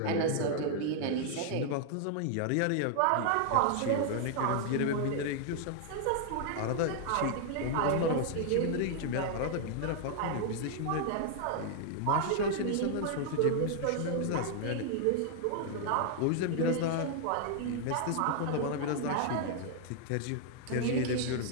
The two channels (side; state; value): both; different; correlation 0.00